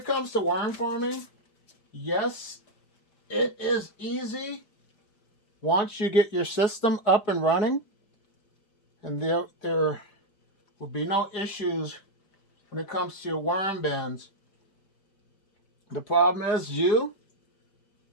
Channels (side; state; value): right; late; 5.0 ms